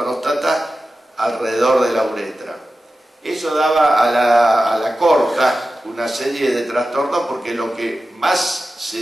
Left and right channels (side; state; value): both; normal; correlation 0.93